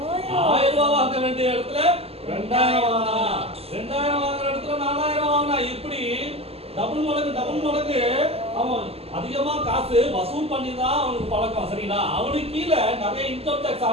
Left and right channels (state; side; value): late; left; 0.29 ms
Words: 1000 ரூபாய் வாங்க வேண்டிய இடத்துல 2000 வாங்கினான். 2000 வாங்குற இடத்துல 4000 வாங்கினான். இப்படி டபுள் மடங்கு அவன் அதிகமா காசு வசூல் பண்ணி தான் அவனுக்கு பழக்கம். சரிங்களா? அவனுக்கு கீழே நிறைய இன்கம் டாக்ஸ்